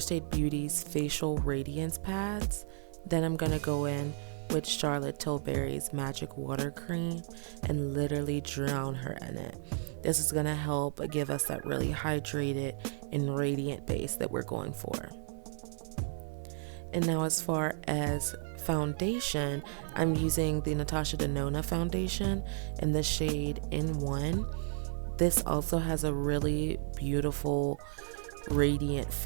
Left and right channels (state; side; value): silent; left; 56 dB below the other